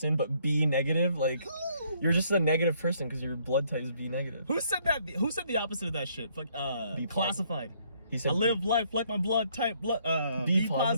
but be negative? Like, you're just a negative person because your blood type is B negative. Who said that? Who said the opposite of that shit? Like, Be classified. He said I live life like my blood type. Be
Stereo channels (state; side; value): inverted; both; correlation -0.67